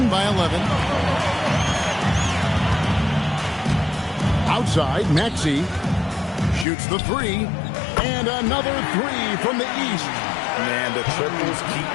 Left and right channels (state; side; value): drops out; right; at 6.7 s